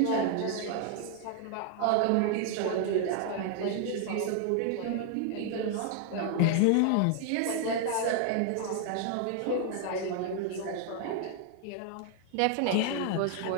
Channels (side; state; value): both; different; correlation 0.00